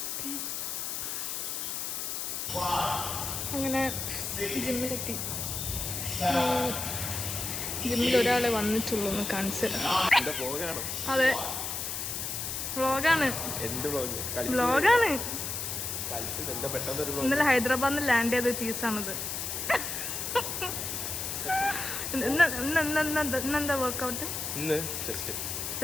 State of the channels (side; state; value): left; noise; hiss, 3 dB below the sound